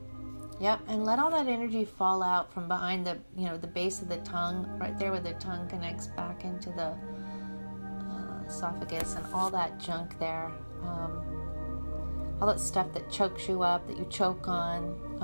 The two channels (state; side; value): inverted; both; correlation -1.00